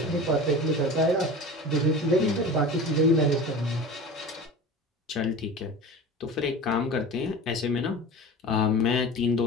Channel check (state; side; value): normal; both; correlation 0.34